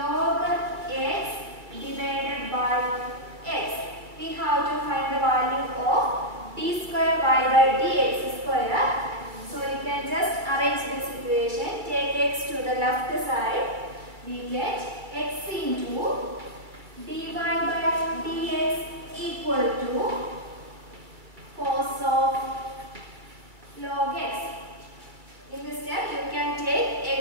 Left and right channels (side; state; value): left; late; 2.2 ms